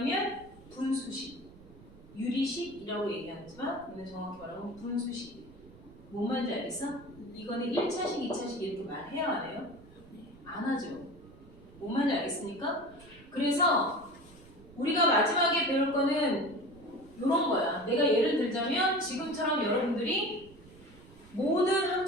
분수라고 얘기하지만 이는 정확히 말하면 분수식. 뭔 말인지 알겠어? 이거는 1차식, 2차식 이렇게 말해야 안 해요? 안 하죠. 뭔 말인지 알겠습니까? 그래서 우리가 마지막에 배울 거는 이런 거야. 내가 예를 들자면 지금처럼 여러분들이 모든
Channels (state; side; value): noise; right; rumble, 22 dB below the sound